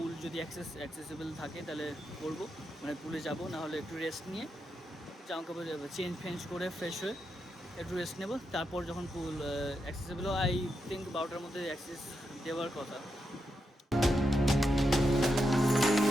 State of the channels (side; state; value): both; normal; correlation 0.85